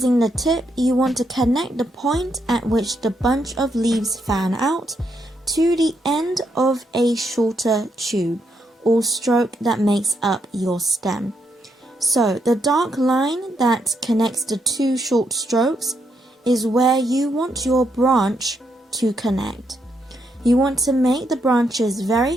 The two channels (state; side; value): normal; both; correlation 0.78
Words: the tip, you want to connect the point at which the bunch of leaves fan out to the end of a shorter tube or stroke that makes up your stem. So, the dark line that connects the two short strokes is where you want your branch to connect. You want to make the branches